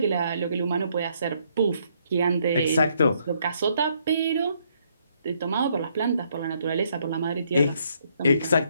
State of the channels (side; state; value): both; inverted; correlation -0.71